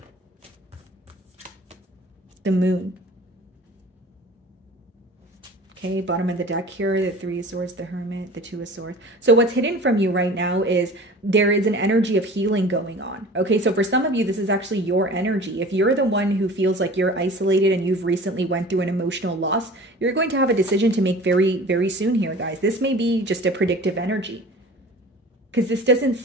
The Moon. Okay, bottom of the deck here, the Three of Swords, the Hermit, the Two of Swords. So what's hidden from you right now is there is an energy of healing going on. Okay, so for some of you, this is actually your energy. If you're the one who feels like you're isolated and you've recently went through an emotional loss, you're going to have a decision to make very, very soon here, guys. This may be just a predictive energy, because this doesn't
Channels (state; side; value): normal; both; correlation 0.42